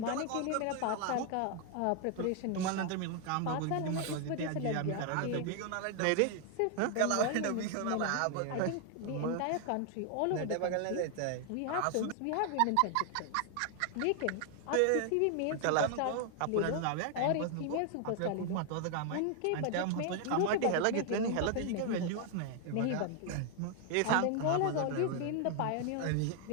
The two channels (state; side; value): different; both; correlation 0.00